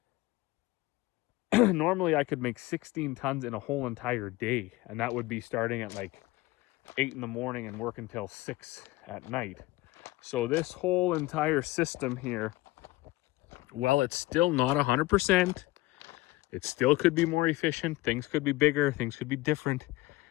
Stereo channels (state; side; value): quieter; right; 19.5 dB